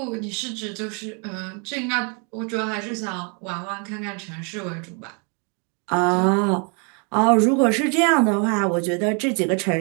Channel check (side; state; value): left; quieter; 36.4 dB